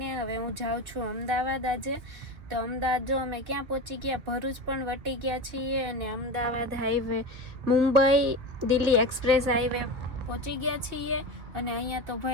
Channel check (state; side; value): late; left; 2.9 ms